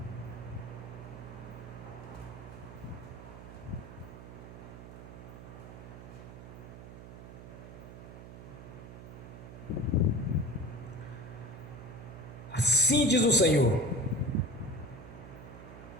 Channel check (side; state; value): right; noise; hum, 13 dB below the sound